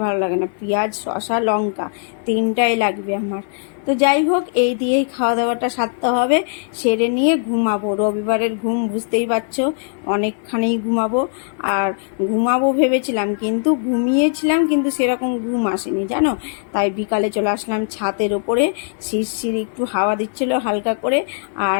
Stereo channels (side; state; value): right; silent; digital silence